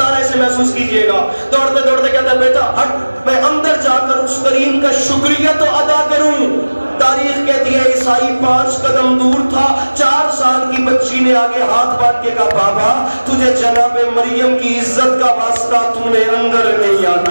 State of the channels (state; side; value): inverted; both; correlation -1.00